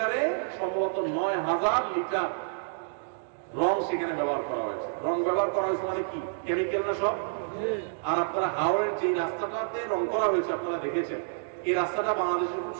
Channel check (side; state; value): left; silent; digital silence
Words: সম্ভবত 9000 লিটার রং সেখানে ব্যবহার করা হয়েছে। রং ব্যবহার করা হয়েছে মানে কি, কেমিক্যাল না সব? আর আপনারা হাওড়ের যে রাস্তাটাতে রং করা হয়েছে আপনারা দেখেছেন, এই রাস্তাটা বাংলাদেশের খুব